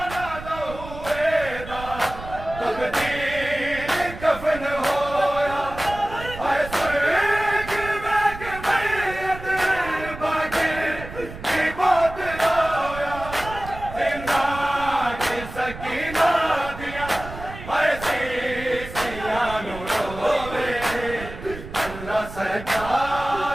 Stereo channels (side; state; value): right; noise; rumble, 12 dB below the sound